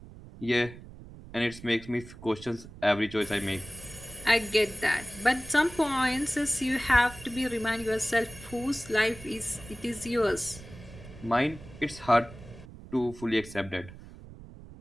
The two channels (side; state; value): right; noise; rumble, 17 dB below the sound